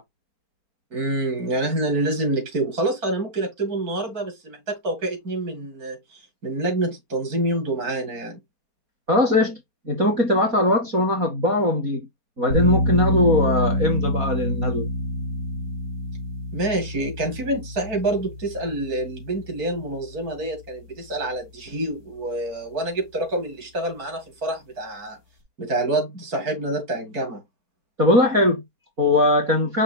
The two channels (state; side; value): late; left; 4.5 ms